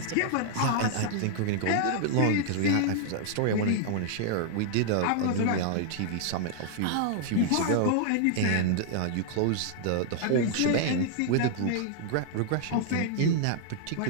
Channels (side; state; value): both; different; correlation -0.01